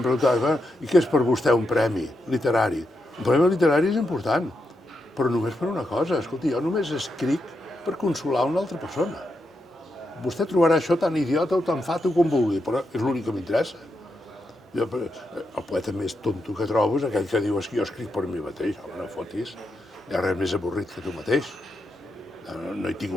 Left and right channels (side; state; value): both; normal; correlation 0.84